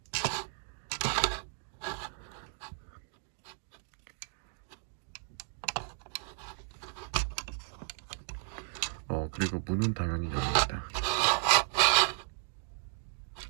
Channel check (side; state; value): left; silent; 55 dB below the other